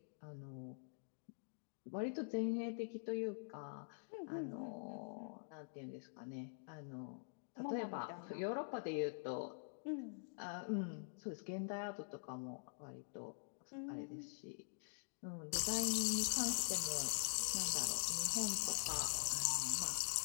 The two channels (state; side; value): silent; right; digital silence